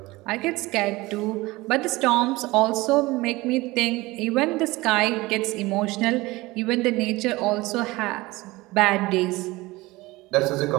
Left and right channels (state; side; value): quieter; left; 20.7 dB